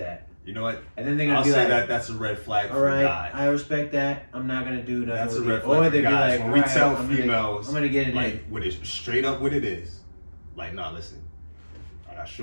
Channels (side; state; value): both; inverted; correlation -1.00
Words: You know what? And then they're gonna I'll be say like, that's a red flag all for right, guys. I respect that. I'm not gonna do nothing. That's a with red it. flag Or for they'd be guys. like, When we all right, tell I'm females, gonna get it like, in. what it straight up what it is, like, nah, listen, I got